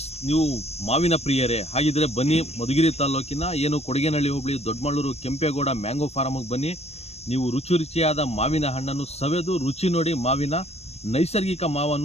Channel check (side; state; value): right; late; 0.31 ms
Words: ನೀವು ಮಾವಿನ ಪ್ರಿಯರೇ ಹಾಗಿದ್ರೆ ಬನ್ನಿ, ಮಧುಗಿರಿ ತಾಲೂಕಿನ ಏನು ಕೊಡಗೇನಹಳ್ಳಿ ಹೋಬಳಿ ದೊಡ್ಡಮಳ್ಳೂರು ಕೆಂಪೇಗೌಡ ಮ್ಯಾಂಗೋ ಫಾರ್ಮ್ಗೆ ಬನ್ನಿ. ನೀವು ರುಚಿಯಾದ ಮಾವಿನ ಹಣ್ಣನ್ನು ಸವೆದು ರುಚಿ ನೋಡಿ ಮಾವಿನ ನೈಸರ್ಗಿಕ